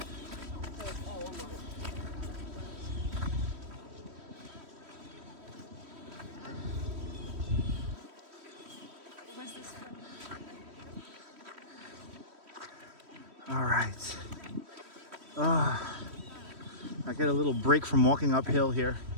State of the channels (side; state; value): left; late; 3.1 ms